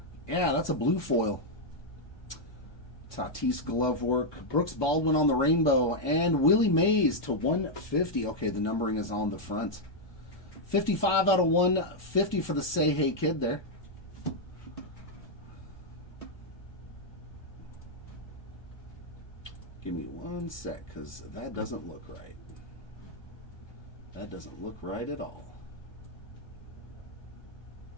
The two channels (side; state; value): right; late; 1.2 ms